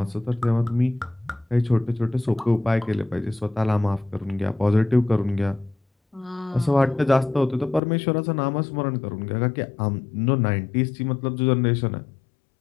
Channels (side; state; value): right; drops out; at 7.8 s